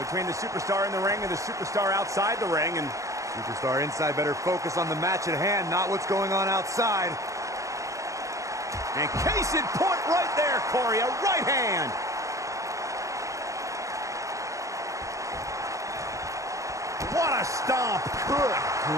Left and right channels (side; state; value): left; late; 0.15 ms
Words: between the superstar in the ring and the superstar outside the ring. And Superstar inside better focus on the match at hand, not what's going on outside. And case in point right there, Corey, a right hand. What a stomp. Good